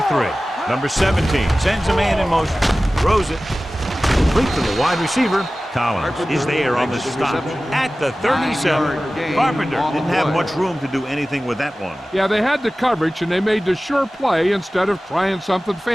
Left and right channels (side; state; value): both; normal; correlation 0.96